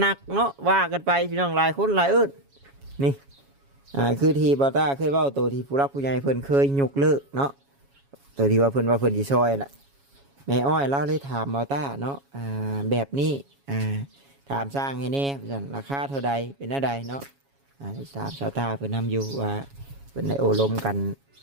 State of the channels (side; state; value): left; late; 7.2 ms